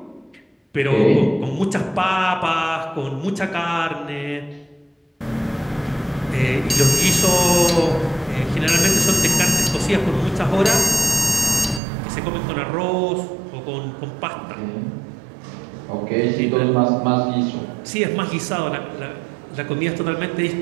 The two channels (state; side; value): drops out; left; at 11.8 s